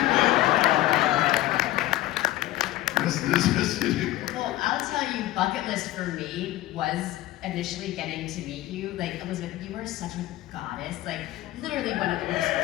Well, I'll tell you, bucket list for me was initially getting to meet you. Like, Elizabeth, you are such a goddess. Like, literally one of the most.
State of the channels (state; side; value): quieter; right; 16.0 dB